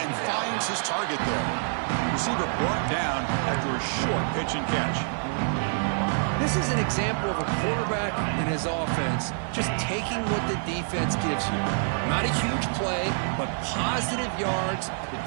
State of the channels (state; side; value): silent; left; digital silence